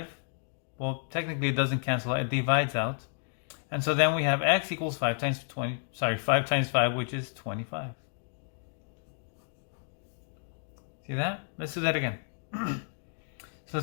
Well, technically it doesn't cancel out, it divides out. And so then we have x equals 5 times 5, which is 25. See that? Let's do that again. So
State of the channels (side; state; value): right; silent; 57 dB below the other